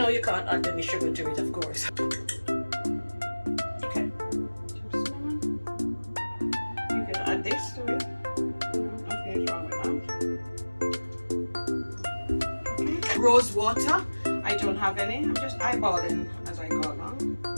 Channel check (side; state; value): both; inverted; correlation -1.00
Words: you can't add any sugar to it, of course. Okay, some cinnamon. You can add this to it. Nothing is wrong with that. Okay. Rose water. I don't have any. I'm just eyeballing as I go along.